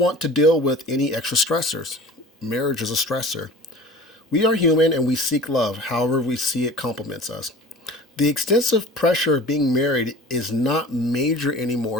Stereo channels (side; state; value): both; normal; correlation 0.41